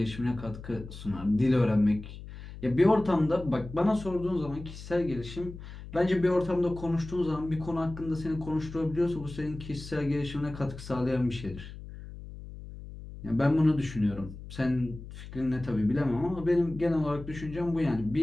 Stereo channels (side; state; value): left; noise; hum, 13 dB below the sound